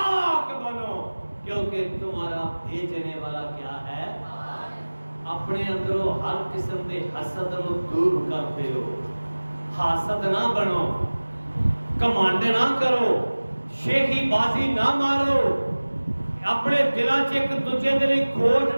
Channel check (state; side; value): inverted; both; correlation -1.00